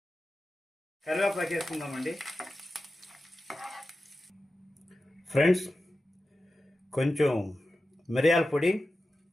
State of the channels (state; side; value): normal; both; correlation 0.93